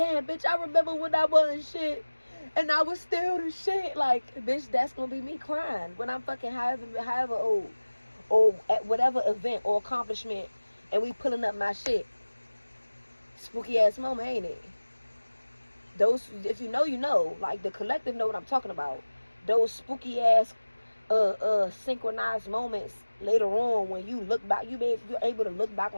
bitch, I remember when I wasn't shit and I was still the shit. Like, bitch, that's gonna be me crying when I'm fucking however old or at whatever event or accomplishment and we pulling up my shit. Spooky ass moment, ain't it? Those, if you know, you know. Like, the collective know what I'm talking about. Those spooky ass synchronized moments later on when you look back, you're able to look back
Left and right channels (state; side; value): inverted; both; correlation -1.00